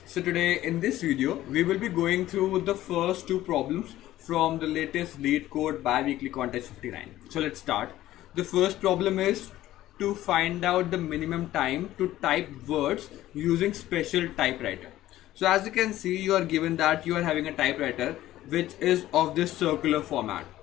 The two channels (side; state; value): right; quieter; 14.6 dB